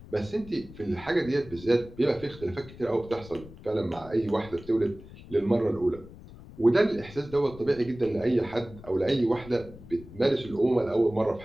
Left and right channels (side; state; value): left; noise; rumble, 18 dB below the sound